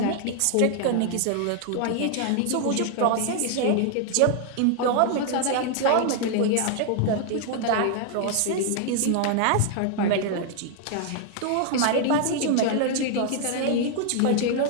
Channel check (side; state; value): both; different; correlation 0.00